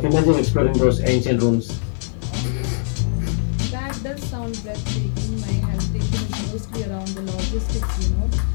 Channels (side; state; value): right; silent; 64 dB below the other